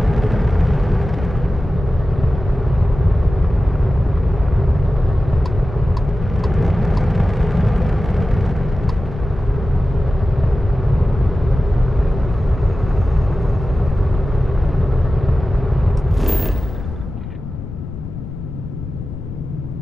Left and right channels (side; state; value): left; noise; rumble, 9 dB below the sound